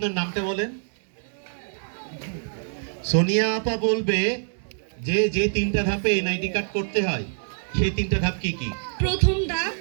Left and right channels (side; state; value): left; silent; digital silence